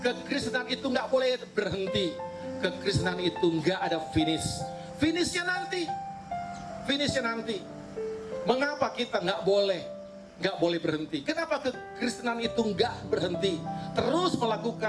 kekristenan itu gak boleh berhenti, kekristenan itu gak ada finish. Finishnya nanti. Mengapa kita gak boleh berhenti? Kenapa kekristenan itu nggak berhenti? Terus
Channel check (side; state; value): both; identical; correlation 1.00